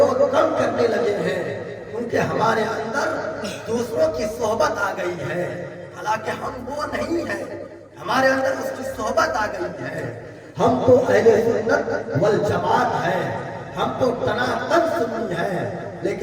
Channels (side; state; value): both; identical; correlation 1.00